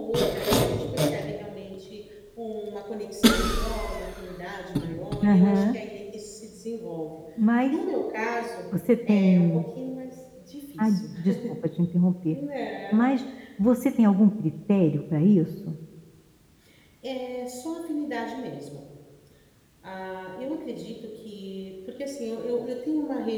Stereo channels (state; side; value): identical; both; correlation 1.00